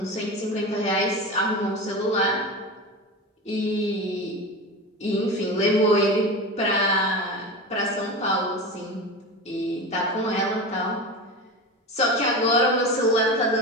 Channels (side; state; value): both; normal; correlation 0.26